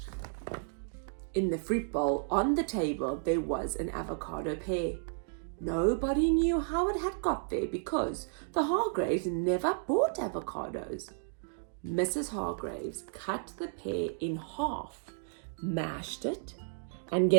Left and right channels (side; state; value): left; silent; digital silence